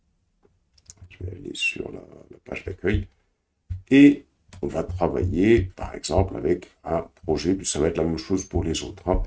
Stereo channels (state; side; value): identical; both; correlation 1.00